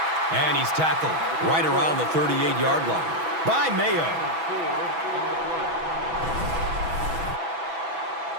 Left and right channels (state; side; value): late; left; 6.2 ms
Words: And he's tackled right around the 38-yard line by Mayo.